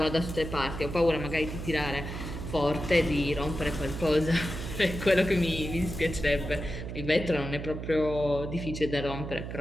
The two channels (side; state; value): right; noise; hum, 7 dB below the sound